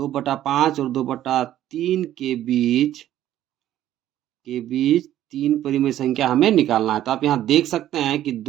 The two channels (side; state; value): left; quieter; 12.5 dB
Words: और 2/3 के बीच 3 परिमेय संख्या हमें निकालना है। तो आप यहाँ देख सकते हैं कि